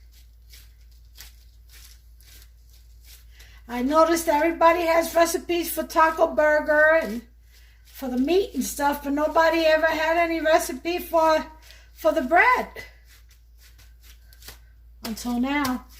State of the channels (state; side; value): identical; both; correlation 1.00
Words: I noticed everybody has recipes for taco burger and for the meat and stuff, but nobody ever had any recipe for the bread. until now.